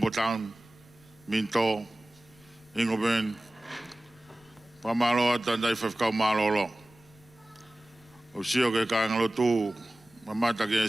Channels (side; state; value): left; noise; rumble, 28 dB below the sound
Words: Town, Minto, Ingoben, Pamalo, Tandai Fafkau Malolo. O sio ke kāinga lotu, mamata ke